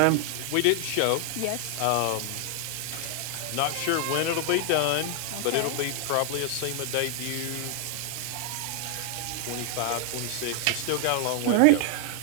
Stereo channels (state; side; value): different; both; correlation 0.00